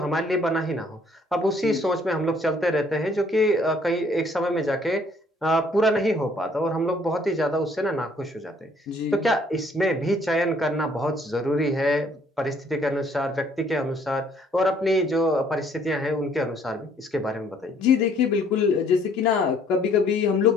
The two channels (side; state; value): both; normal; correlation 0.62